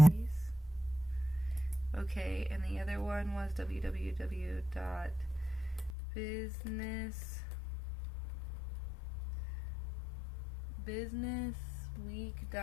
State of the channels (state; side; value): drops out; right; at 6.0 s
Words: Okay, and the other one was